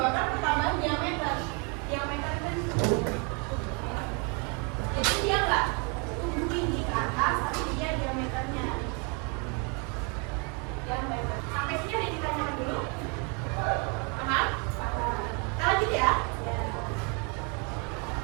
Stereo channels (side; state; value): left; quieter; 34.0 dB